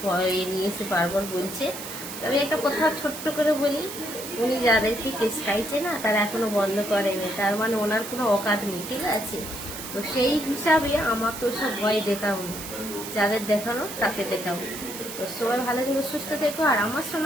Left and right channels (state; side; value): noise; right; hiss, 9 dB below the sound